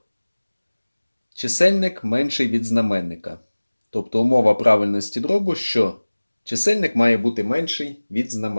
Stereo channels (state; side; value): inverted; both; correlation -1.00